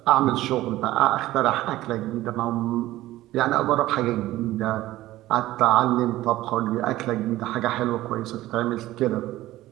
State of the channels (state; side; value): quieter; left; 16.0 dB